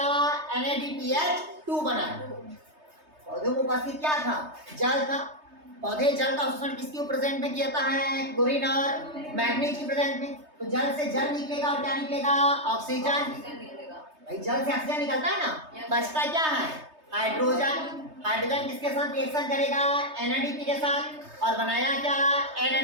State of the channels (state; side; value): late; left; 3.3 ms